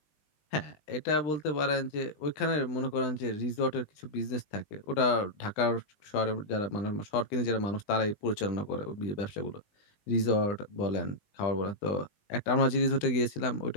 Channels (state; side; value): late; right; 20 ms